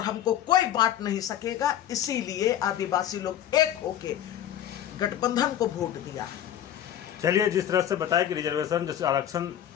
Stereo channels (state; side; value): quieter; right; 11.0 dB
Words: हमको कोई बांट नहीं सकेगा। इसीलिए आदिवासी लोग एक होके गठबंधन को वोट दिया। चलिए, जिस तरह से बताया कि रिजर्वेशन जैसे आरक्षण